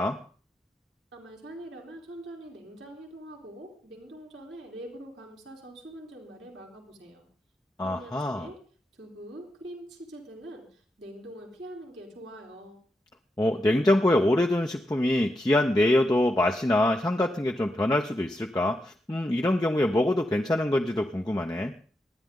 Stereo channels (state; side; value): normal; both; correlation 0.85